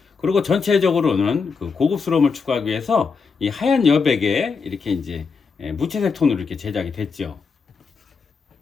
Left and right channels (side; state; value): right; quieter; 5.2 dB